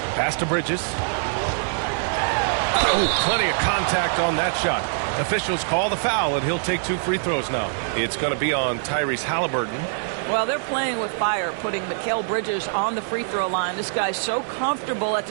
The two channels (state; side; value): silent; left; 63 dB below the other